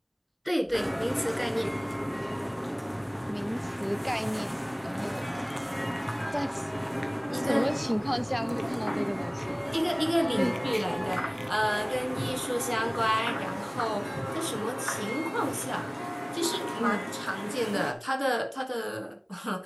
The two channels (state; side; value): identical; both; correlation 1.00